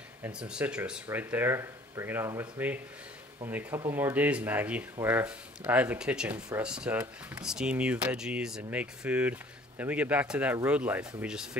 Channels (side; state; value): both; normal; correlation 0.53